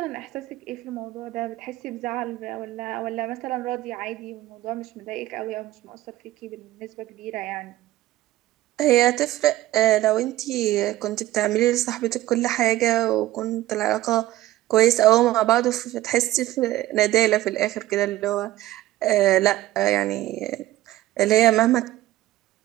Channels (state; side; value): quieter; left; 15.6 dB